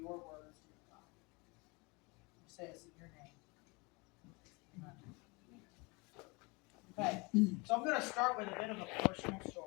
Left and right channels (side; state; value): right; quieter; 27.7 dB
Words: your words, dear God. We say this in your name. Amen. Okay, so I'm going to start with a bit of a personal